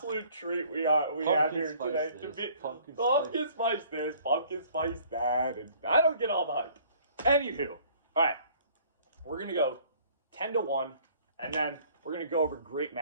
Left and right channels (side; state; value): both; inverted; correlation -0.56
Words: treat we have here today. Pumpkin spice this, pumpkin spice that, and I don't get all the hype. Anywho, all right, we're gonna go 10-1, and then we're gonna go over great